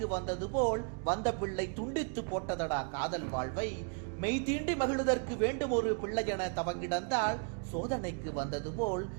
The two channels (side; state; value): left; quieter; 39.5 dB